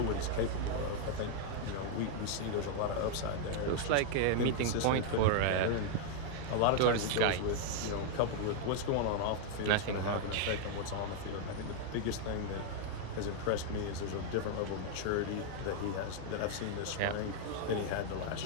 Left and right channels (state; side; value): different; both; correlation 0.00